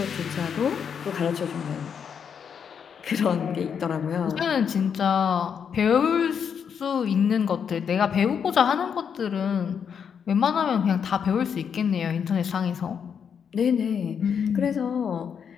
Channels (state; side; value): quieter; right; 7.3 dB